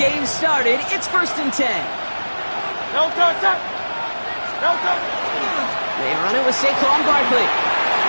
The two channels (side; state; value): both; inverted; correlation -1.00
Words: started. It's 1st and 10. No touch. No touch. They run it with Saquon Barkley.